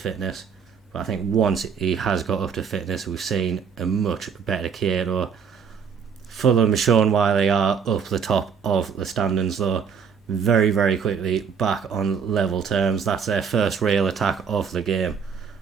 But I think once he has got up to fitness, we've seen a much better Kieto. Fulham has shown why they are up the top of the standings though. Very, very quickly back on level terms. That's their first real attack of the game.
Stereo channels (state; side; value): quieter; left; 6.5 dB